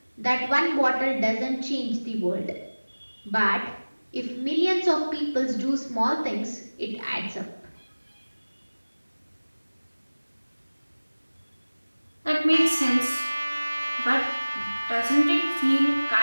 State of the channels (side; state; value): both; inverted; correlation -1.00